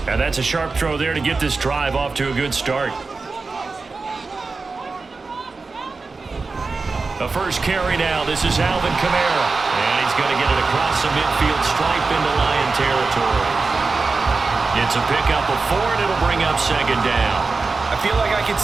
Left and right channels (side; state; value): left; quieter; 4.1 dB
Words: And that's a sharp throw there to get this drive off to a good start. The first carry now. This is Alvin Kamara. And he's going to get it across the midfield stripe into Lion territory. It's a pickup of 4, and it'll bring up 2nd down. I feel like I could